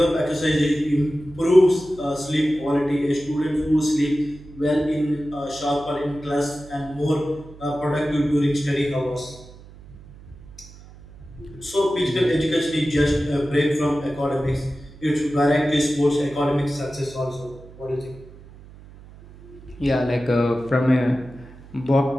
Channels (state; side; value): noise; right; hum, 20 dB below the sound